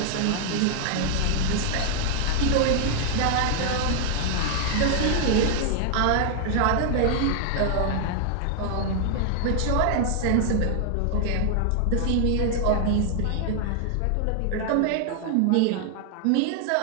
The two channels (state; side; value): different; both; correlation 0.00